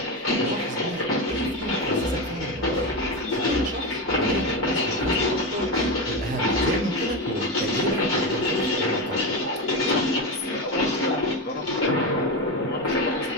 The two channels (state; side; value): normal; both; correlation 0.16